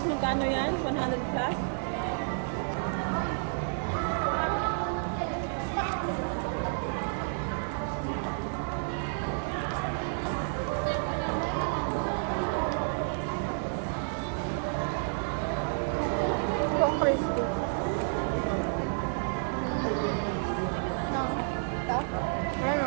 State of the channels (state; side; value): silent; left; digital silence